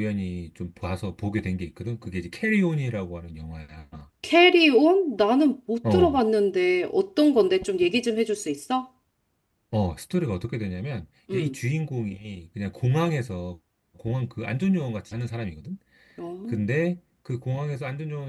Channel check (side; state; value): both; identical; correlation 1.00